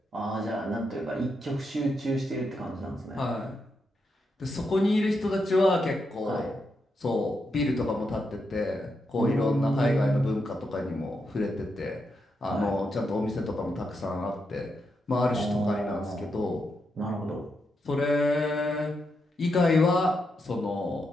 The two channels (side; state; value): both; normal; correlation 0.83